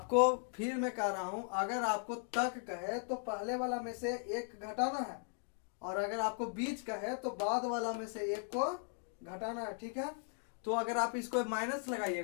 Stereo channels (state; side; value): silent; right; 53 dB below the other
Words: फिर मैं कह रहा हूं, अगर आपको तक कहे तो पहले वाला में से 1 घटाना है, और अगर आपको बीच कहे तो बाद वाला में से 1 को घटाना है। ठीक है, तो अगर आप इसको माइनस